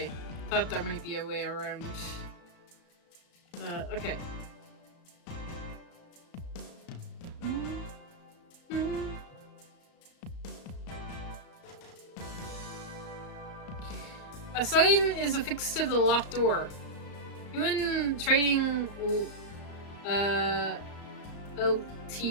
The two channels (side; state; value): right; late; 35 ms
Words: Thought there might be a way around. Okay. A sign is affixed to the locked door. Human Trading Ltd.